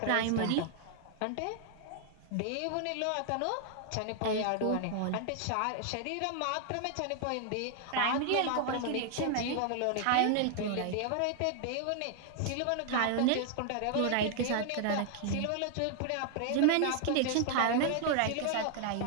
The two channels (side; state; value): both; different; correlation 0.00